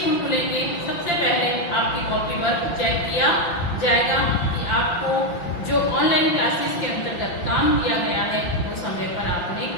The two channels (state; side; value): late; right; 5.8 ms